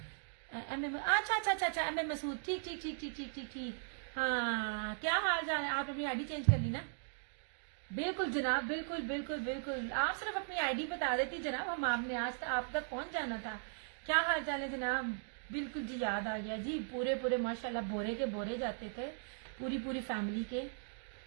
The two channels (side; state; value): left; silent; digital silence